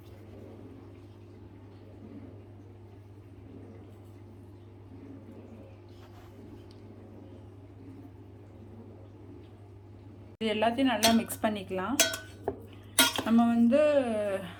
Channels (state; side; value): identical; both; correlation 1.00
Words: இது எல்லாத்தையும் நல்லா மிக்ஸ் பண்ணிக்கலாம். நம்ம